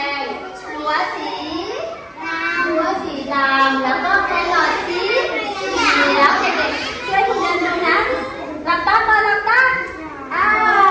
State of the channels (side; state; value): both; identical; correlation 1.00